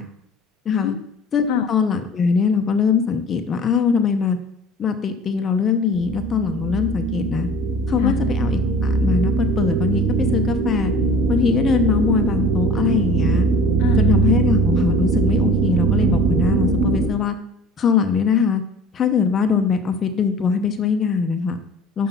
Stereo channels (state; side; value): normal; both; correlation 0.44